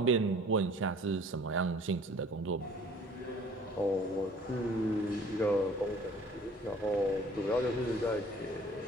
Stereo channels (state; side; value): normal; both; correlation 0.52